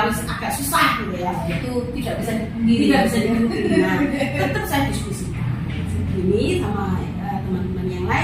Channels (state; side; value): identical; both; correlation 1.00